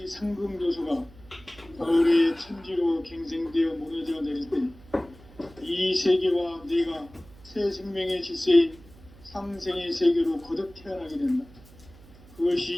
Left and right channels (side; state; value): right; noise; hum, 23 dB below the sound